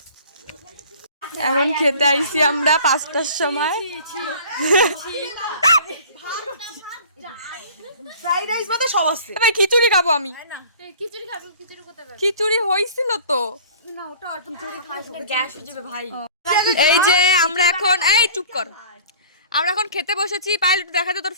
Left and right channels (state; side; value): inverted; both; correlation -0.46